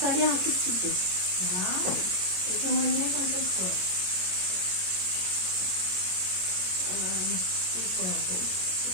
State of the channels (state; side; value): late; left; 22 ms